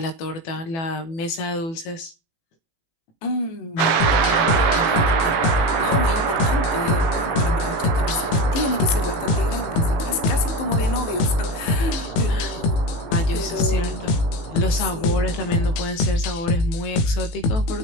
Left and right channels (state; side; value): late; right; 18 ms